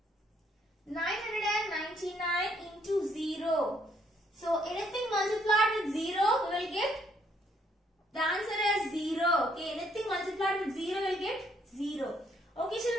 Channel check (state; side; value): normal; both; correlation 0.69